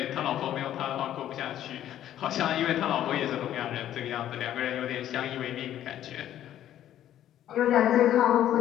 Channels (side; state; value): right; quieter; 11.7 dB